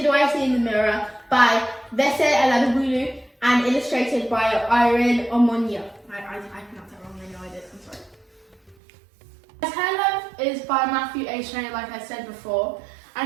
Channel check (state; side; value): drops out; left; at 8.8 s